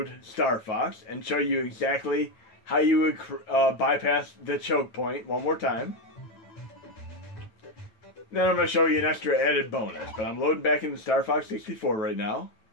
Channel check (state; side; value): late; right; 9.3 ms